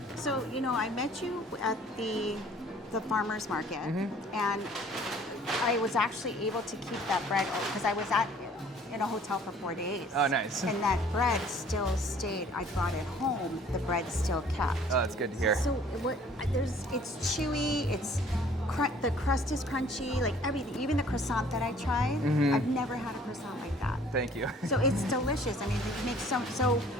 So I met you at the farmer's market, and I was actually able to keep that bread because I was in a hotel for 4 days. Oh, nice. And that bread still stayed. I brought it home. The bread still kept. Oh, that's good to hear. So it's chewy. The crust is crunchy. Like everything, even the croissant that I tried. I've never had a croissant like that. Thank you. So it's delicious. I mean, you make so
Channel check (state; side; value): normal; both; correlation 0.54